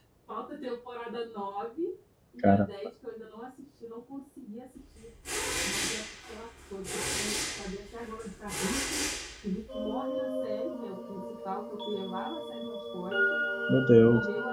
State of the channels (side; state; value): both; identical; correlation 1.00